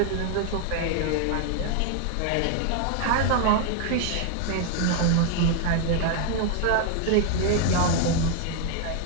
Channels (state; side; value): different; both; correlation 0.00